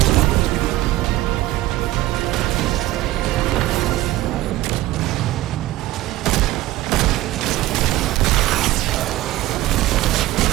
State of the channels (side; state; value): left; quieter; 16.2 dB